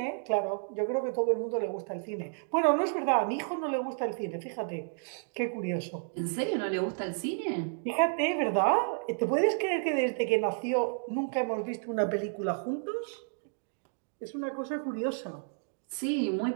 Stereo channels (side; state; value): left; silent; digital silence